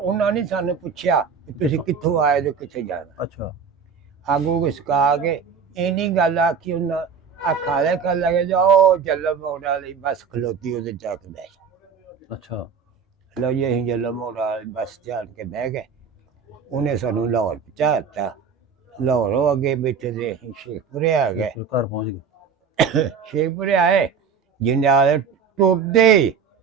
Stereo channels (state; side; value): quieter; left; 6.2 dB